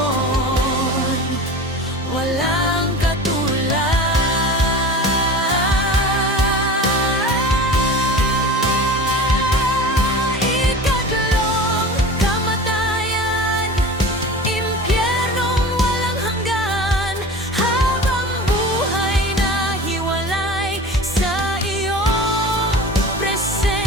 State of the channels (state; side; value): normal; both; correlation 0.35